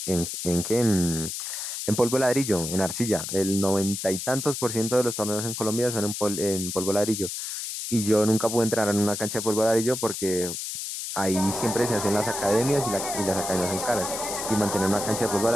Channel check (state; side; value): noise; left; hiss, 5 dB below the sound